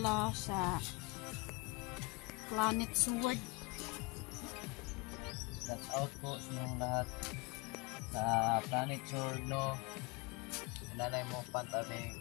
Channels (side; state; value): right; quieter; 26.7 dB